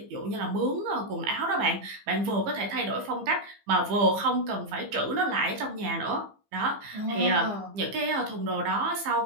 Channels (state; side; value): late; left; 15 ms